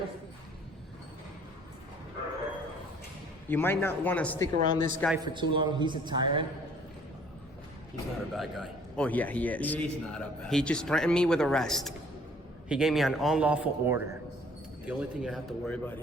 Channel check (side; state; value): both; normal; correlation 0.57